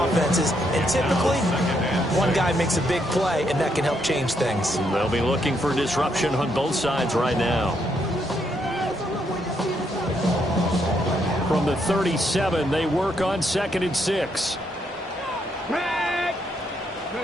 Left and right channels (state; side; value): normal; both; correlation 0.76